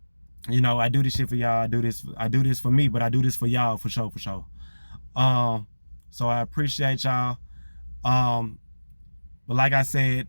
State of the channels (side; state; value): both; inverted; correlation -1.00